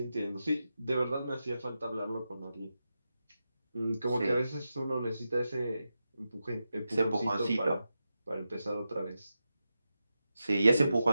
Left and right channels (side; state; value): both; inverted; correlation -0.90